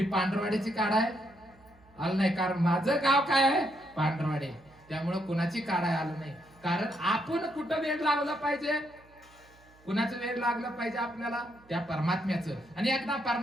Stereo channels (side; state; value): right; noise; hum, 28 dB below the sound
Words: पांढरवाडीची काढाय आलं नाही कारण माझं गाव काय आहे पांढरवाडी. त्यामुळे कुणाची काढाय आलं नाही. कारण आपण कुठं वेळ लावला पाहिजे कुणाचं वेळ लागलं पाहिजे आपल्याला त्या परमात्म्याचं. आणि एकदा